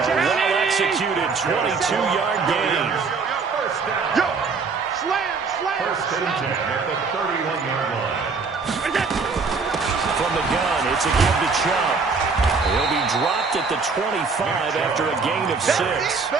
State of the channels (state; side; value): quieter; left; 4.7 dB